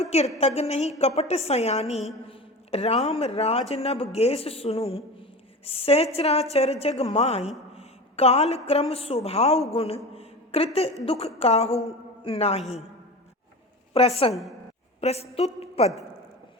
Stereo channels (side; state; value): both; normal; correlation 0.31